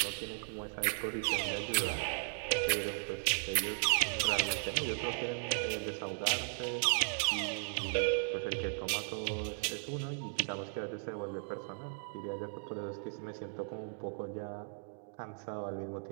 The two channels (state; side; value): silent; left; digital silence